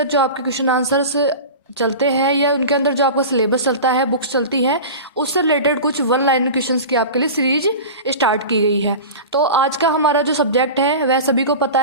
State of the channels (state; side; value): inverted; both; correlation -0.31